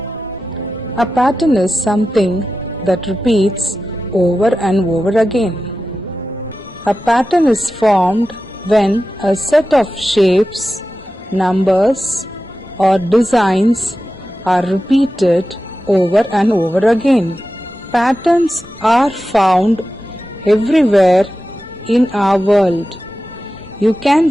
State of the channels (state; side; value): normal; both; correlation 0.93